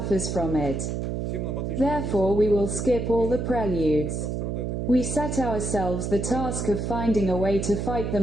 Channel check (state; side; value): noise; right; hum, 2 dB below the sound